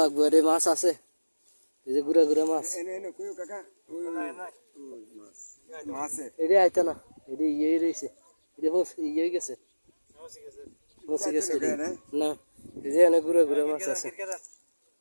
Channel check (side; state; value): both; inverted; correlation -1.00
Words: লাগবে রে মাছ আছে এই যে গুড়া গুড়া মাছ এনে এনে কইও কাকা ওই মাছ মাছে এটা আইতো না এটা ইয়ে রয়েছে এটা ইয়ে গেছে মসি গেছে না এই যে এনে গুড়া গুড়া মাছ আছে